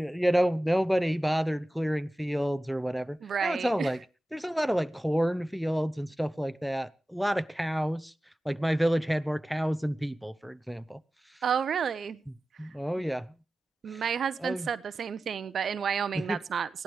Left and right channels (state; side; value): normal; both; correlation 0.95